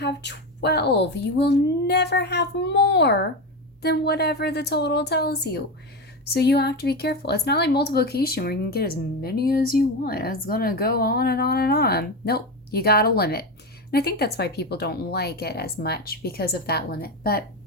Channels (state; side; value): normal; both; correlation 0.17